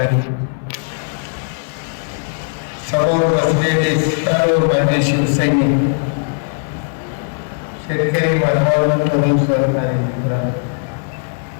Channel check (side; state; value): right; silent; digital silence